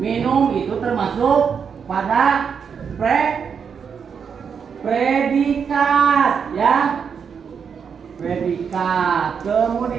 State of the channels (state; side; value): quieter; left; 6.7 dB